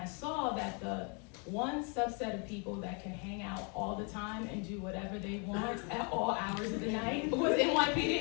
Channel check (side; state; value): right; quieter; 35.6 dB